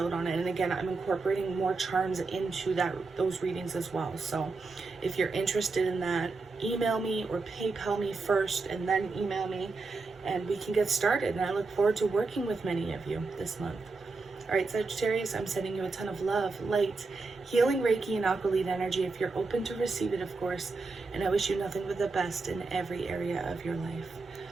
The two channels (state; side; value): quieter; left; 3.9 dB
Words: on it. And again, I'm incorporating more charms into those readings as well. So if you're interested in that, email me or PayPal me first and then email me, and we can get started. And I look forward to working with many of you this month. All right, Sagittarius, I'm sending you a ton of love, light, healing Reiki and Aqualite energy if you're open to receive it, of course. And I wish you nothing but the best in every area of your life.